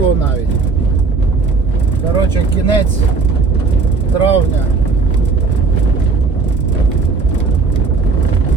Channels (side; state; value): left; quieter; 4.5 dB